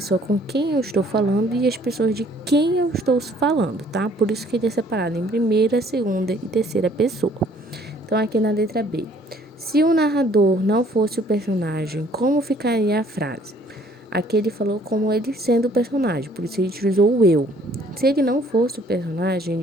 com quem eu estou falando e as pessoas de quem eu estou falando, tá? Por isso que ele é separado em primeira, segunda e terceira pessoa. Então, aqui na letra B. Se o narrador não fosse o personagem, como ficaria a frase? Aqui ele falou como ele sendo o personagem, por isso ele utilizou o eu. Se ele não fosse o personagem,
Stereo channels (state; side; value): normal; both; correlation 0.59